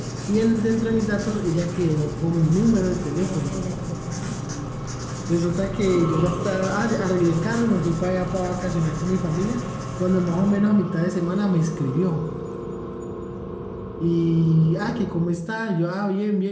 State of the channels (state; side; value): identical; both; correlation 1.00